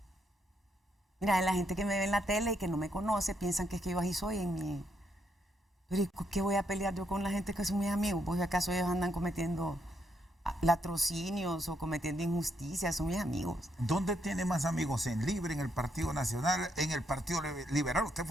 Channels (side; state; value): both; normal; correlation 0.76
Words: Mira, la gente que me ve en la tele y que no me conoce piensan que es que yo así soy en mi... Pero ¿qué voy a pelear yo con la gente que son mis amigos? Pues acaso ellos andan cometiendo latrocinios o cometiendo injusticias, son mis amigos. ¿Dónde tiene más amigos? ¿En Libre, en el Partido Nacional, en el Partido Liberal? Usted